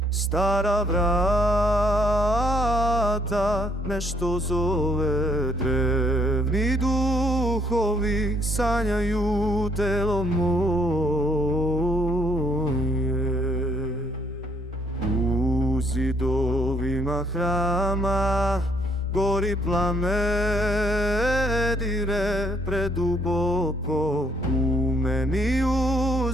stara vrata nešto zove, drevni duhovi sanjaju telo moje. U zidovima hrama gori plamen, dire preduboko u meni,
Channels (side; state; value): both; normal; correlation 0.68